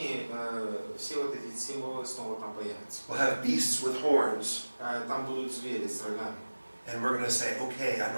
все вот эти символы снова там появятся. We'll have beasts with horns. Там будут звери с рогами. And we're going to say, okay, I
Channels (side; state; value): both; inverted; correlation -1.00